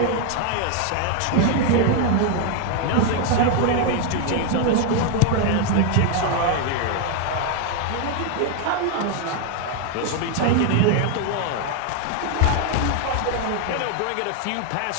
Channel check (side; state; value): both; different; correlation 0.01